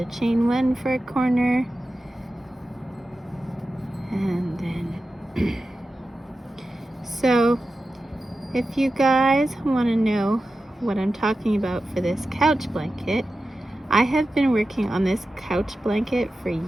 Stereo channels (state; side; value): normal; both; correlation 0.93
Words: chain 1 for a corner, and then so if you guys want to know what I'm talking about for this couch blanket, I have been working on this couch blanket for